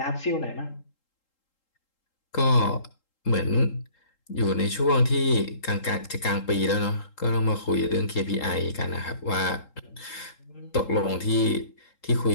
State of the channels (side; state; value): right; late; 3.8 ms